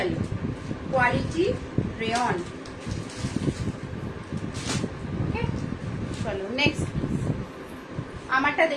quality rayon, okay? चलो नेक्स्ट পিস। আমারটা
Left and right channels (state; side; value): identical; both; correlation 1.00